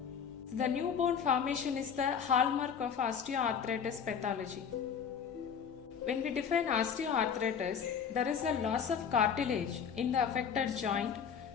The new bone formation is the hallmark of osteoarthritis pathology. When we define osteoarthritis, there is a loss of cartilage in the affected joint.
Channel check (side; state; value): right; quieter; 7.1 dB